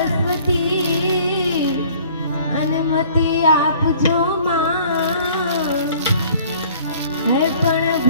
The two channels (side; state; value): both; inverted; correlation -0.54